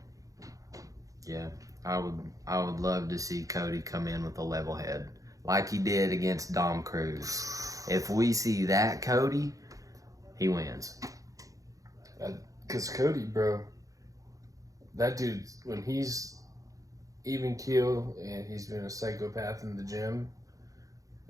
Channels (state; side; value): late; left; 0.16 ms